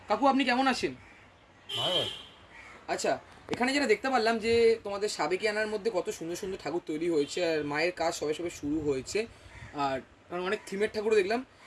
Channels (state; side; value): identical; both; correlation 1.00